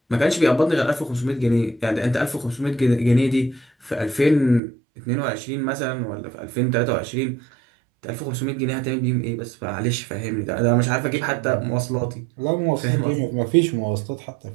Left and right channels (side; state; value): left; drops out; at 4.6 s